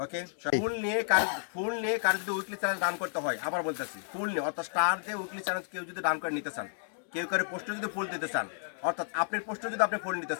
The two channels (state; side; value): silent; right; digital silence